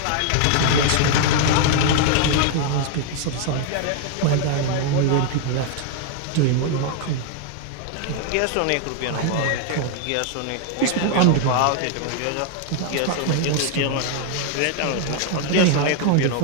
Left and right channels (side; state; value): both; different; correlation 0.00